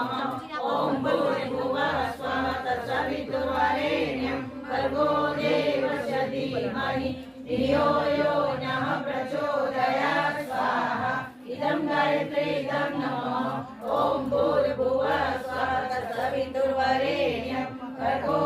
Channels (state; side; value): identical; both; correlation 1.00